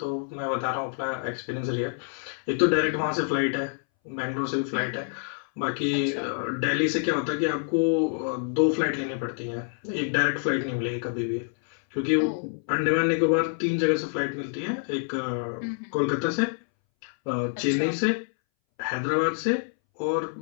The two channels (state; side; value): silent; right; 60 dB below the other